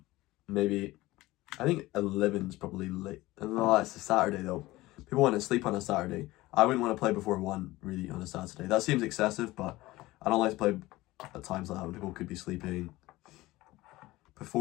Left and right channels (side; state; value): right; quieter; 18.6 dB